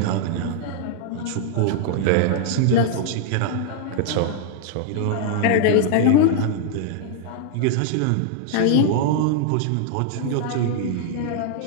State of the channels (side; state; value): both; different; correlation -0.01